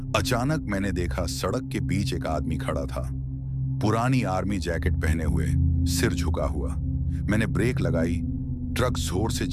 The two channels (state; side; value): identical; both; correlation 1.00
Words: अचानक मैंने देखा, सड़क के बीच एक आदमी खड़ा था, पुरानी आर्मी जैकेट पहने हुए, सिर झुका हुआ। मैंने ब्रेक लगाई, ट्रक जोर से